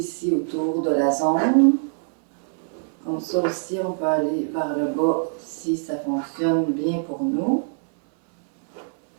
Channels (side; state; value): left; silent; 63 dB below the other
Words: autour de la zone. Comme ça aussi, on peut aller vers le bas si ça fonctionne bien pour nous.